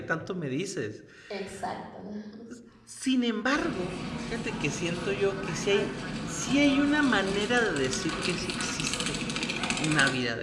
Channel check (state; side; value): identical; both; correlation 1.00